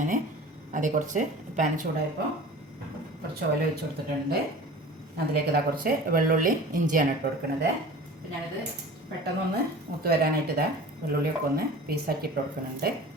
ഞാൻ അതേ കുറച്ച് പാൻ ചൂടായപ്പോൾ കുറച്ച് ഓയിൽ ഒഴിച്ച് കൊടുത്തിട്ടുണ്ട്. അതിലേക്ക് ഇതാ കുറച്ച് വെള്ളുള്ളി ഇഞ്ചിയാണ് ഇട്ട് കൊടുക്കുന്നത്. അപ്പോൾ ഞാനിത് പെട്ടെന്നൊന്ന് മൂത്ത് വരാനായിട്ട് ഇതാ വെള്ളുള്ളിയൊക്കെ ഒന്ന് പീസാക്കി ഇട്ട് കൊടുക്കുന്നുണ്ട്.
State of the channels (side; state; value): both; normal; correlation 0.40